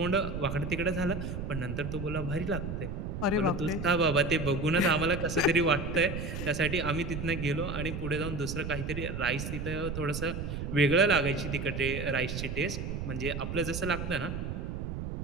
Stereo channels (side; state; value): right; noise; rumble, 5 dB below the sound